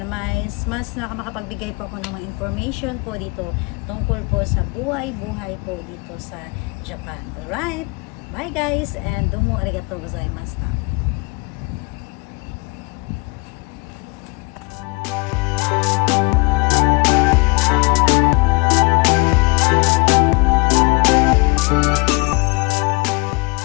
mas makakapagbigay po ako ng mga information po dito tungkol po sa buhay po dito sa Japan. Alright, bye guys, and domo arigatou gozaimashita.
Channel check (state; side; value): quieter; right; 27.8 dB